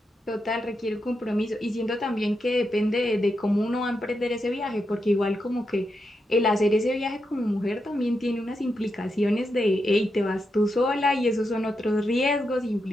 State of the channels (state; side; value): normal; both; correlation 0.85